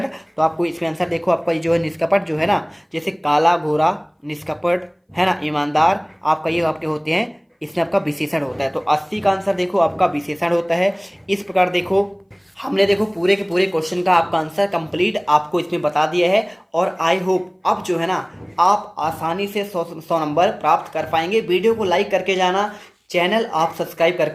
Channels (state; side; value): identical; both; correlation 1.00